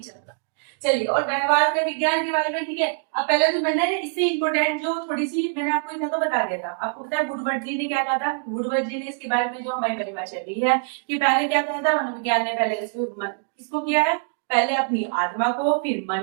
रहा है। चलिए, और व्यवहार का विज्ञान के बारे में, ठीक है। अब पहले तो मैंने इससे इंपोर्टेंट जो थोड़ी सी मैंने आपको इतना तो बता दिया था। आपको पता है वुडवर्ड जी ने क्या कहा था। वुडवर्ड जी ने इसके बारे में जो हमारी परिभाषा दी है कि पहले क्या कहा था मनोविज्ञान ने, पहले किसको किया है, पहले अपनी आत्मा को, फिर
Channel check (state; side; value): silent; left; 63 dB below the other